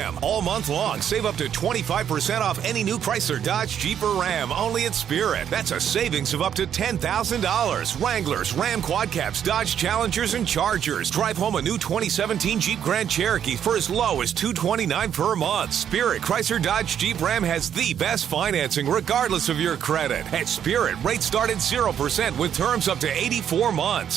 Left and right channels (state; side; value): quieter; left; 9.1 dB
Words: All month long, save up to 25% off any new Chrysler Dodge Jeep or Ram only at Spirit. That's a savings of up to $10,000. Wranglers, Ram Quad Caps, Dodge Challengers, and Chargers. Drive home a new 2017 Jeep Grand Cherokee for as low as $229 per month. Spirit Chrysler Dodge Jeep Ram has the best financing regardless of your credit. At Spirit, rates start at 0% with terms up to 84